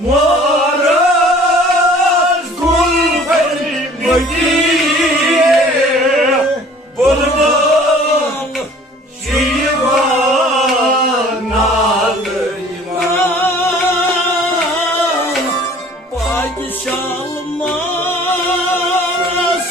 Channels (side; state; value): both; normal; correlation 0.50